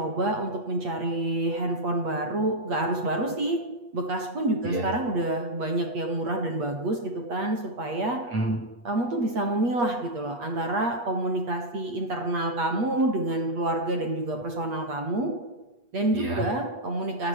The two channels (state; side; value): late; left; 8.4 ms